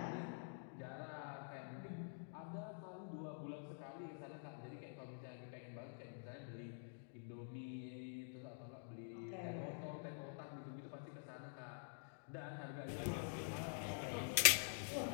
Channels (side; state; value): right; silent; digital silence